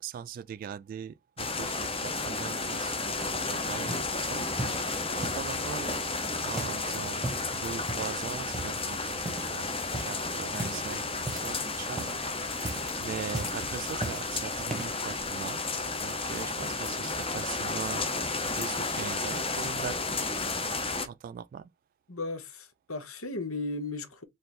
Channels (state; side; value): normal; both; correlation 0.03